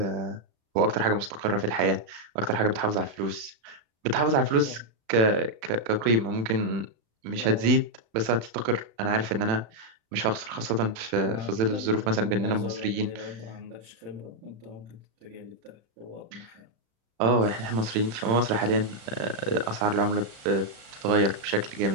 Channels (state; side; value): late; left; 35 ms